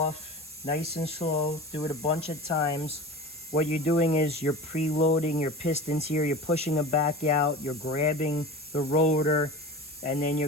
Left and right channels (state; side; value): normal; both; correlation 0.33